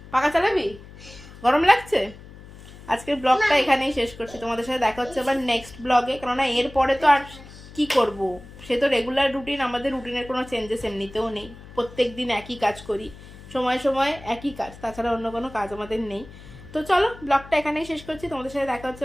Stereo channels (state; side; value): noise; left; hum, 18 dB below the sound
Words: পাখা চালাবি? গরম লাগছে? আজকের ব্লগটা এখানেই শেষ করছি। তোমাদের সাথে দেখা হচ্ছে আবার নেক্সট ব্লগে, কেননা এরপরে তো আর কি করব, সে তো রেগুলার রুটিন। আমাদের রুটিনের কোনো চেঞ্জেস এমনিতেও নেই, প্রত্যেক দিন একই কাজ করি, সময় সময় একই কাজ, তাছাড়া অন্য কোনো কাজ আমাদের নেই। তো চলো ব্লগটা এখানেই শেষ করছি। তোমাদের সাথে দেখা হচ্ছে